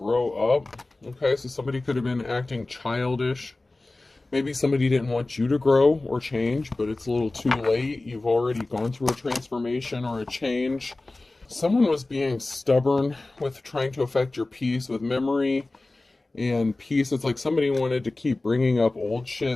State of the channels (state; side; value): quieter; right; 3.0 dB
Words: up. Okay, so somebody could have been acting childish. Maybe somebody didn't want you to grow or change, but it's a little too late. You've already gone through a transformation or a change. Someone was being stubborn with trying to affect your peace with memory and peace. It's like somebody wanted to keep bringing up old